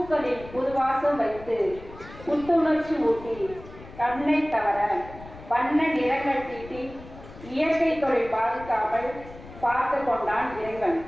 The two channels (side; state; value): left; noise; rumble, 17 dB below the sound